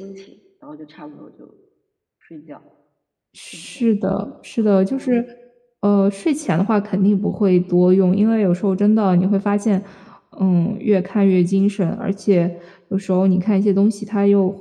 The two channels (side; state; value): both; identical; correlation 1.00